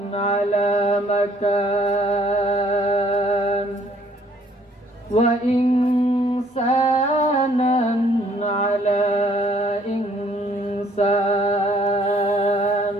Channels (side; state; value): both; normal; correlation 0.61